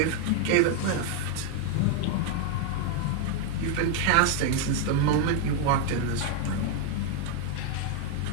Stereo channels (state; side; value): different; both; correlation 0.00